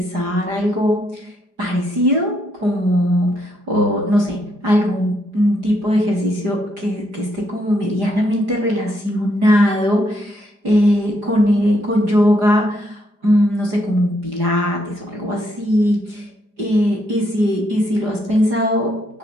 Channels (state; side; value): late; left; 4.9 ms